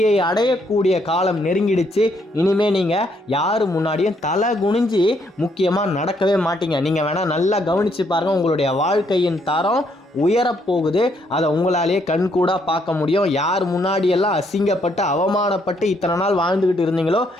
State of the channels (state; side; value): normal; both; correlation 0.72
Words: அடையக்கூடிய காலம் நெருங்கிடுச்சு. இனிமே நீங்கள் யார் முன்னாடியும் தலை குனிஞ்சு முக்கியமாக நடக்கவே மாட்டீங்க. நீங்கள் வேணால் நல்லா கவனித்து பாருங்கள், உங்களுடைய வாழ்க்கையின் தரம் உயரப்போகுது. அதை உங்களாலேயே கண்கூடா பார்க்க முடியும். யார் முன்னாடியெல்லாம் அசிங்கப்பட்டு அவமானப்பட்டு இத்தனை நாள் வாழ்ந்துக்கிட்டு இருந்தீங்களோ